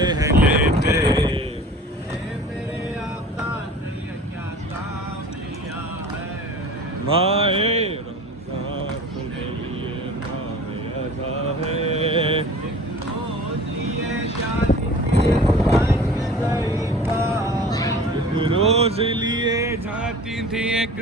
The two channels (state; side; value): normal; both; correlation 0.42